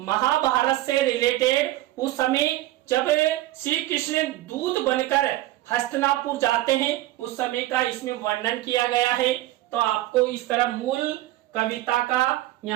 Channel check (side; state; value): left; quieter; 16.2 dB